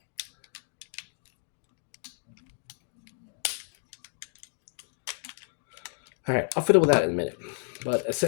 All right, I'll fiddle with that in a minute. But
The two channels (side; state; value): right; silent; digital silence